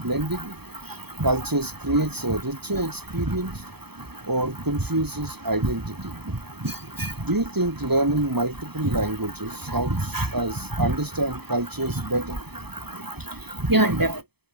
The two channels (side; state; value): left; late; 0.97 ms